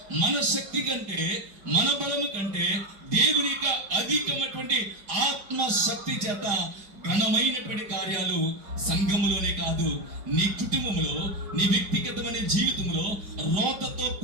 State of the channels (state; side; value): late; left; 5.0 ms